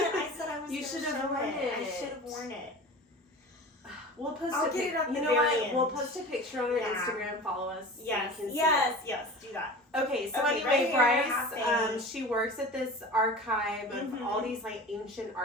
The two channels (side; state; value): both; normal; correlation 0.36